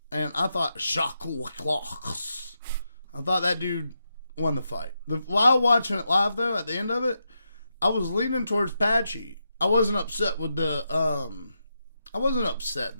and I thought Jakub Wicklax, I thought that dude won the fight. While watching it live, though, at the end of it, I was leaning towards Patchy. I wasn't upset with the I wasn't upset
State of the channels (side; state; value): both; inverted; correlation -0.85